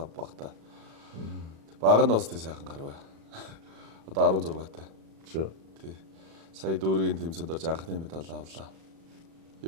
багтаа. Баг нь бас тий сайхан гарваа. Одоо 16-тай. Тий. Сая дүүргийн тэмцээнд орж анхны медаль авлаа.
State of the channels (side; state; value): left; late; 36 ms